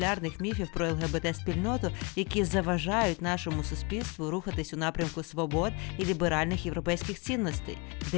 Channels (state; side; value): quieter; right; 30.0 dB